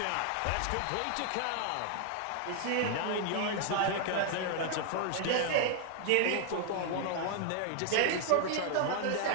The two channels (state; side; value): different; both; correlation 0.00